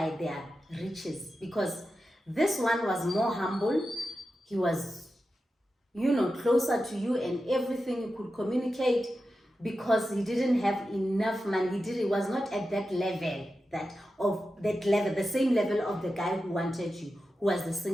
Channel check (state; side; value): normal; both; correlation 0.91